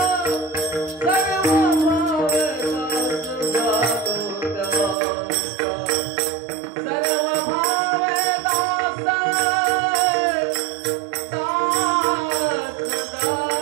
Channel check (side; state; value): left; drops out; at 5.0 s